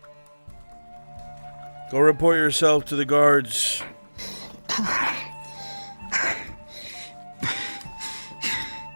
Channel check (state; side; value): inverted; both; correlation -1.00